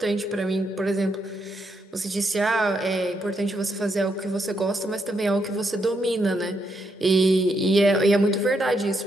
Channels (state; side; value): normal; both; correlation 0.78